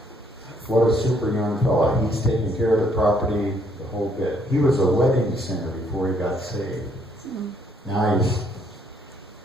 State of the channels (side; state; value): both; normal; correlation 0.68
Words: What a super young fella. He's taking care of the property the whole bit. He was a wedding singer before he got saved. Now